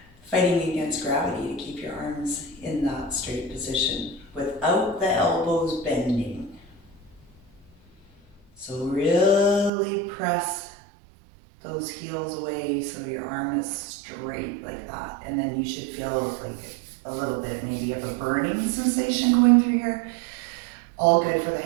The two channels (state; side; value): drops out; left; at 9.7 s